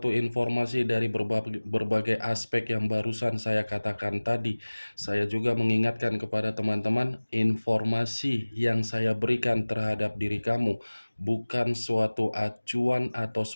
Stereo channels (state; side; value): inverted; both; correlation -1.00